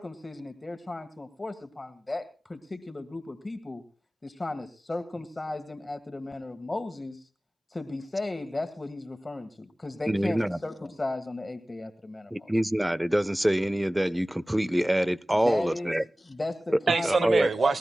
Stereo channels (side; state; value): both; normal; correlation 0.97